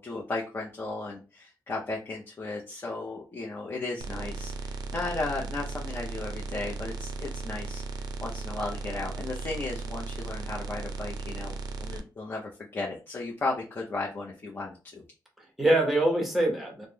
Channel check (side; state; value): both; normal; correlation 0.76